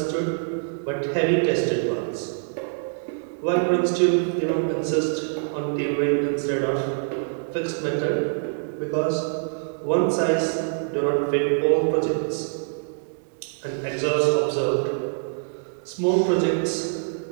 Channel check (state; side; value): silent; left; digital silence